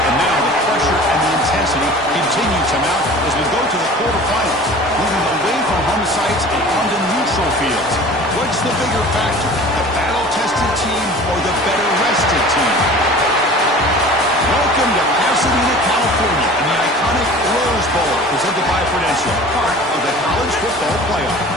now the pressure and the intensity continue to mount as we go to the quarterfinals, moving away from home sites and onto neutral fields. What's the bigger factor, the battle-tested team or the better-rested team? Welcome to Pasadena, California, in the iconic Rose Bowl, presented by Prudential, part of the college football playoff.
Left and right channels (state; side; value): normal; both; correlation 0.42